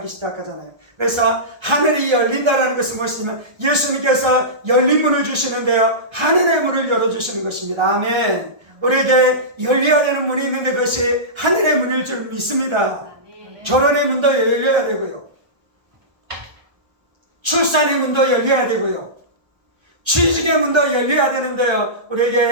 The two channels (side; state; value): left; late; 1.2 ms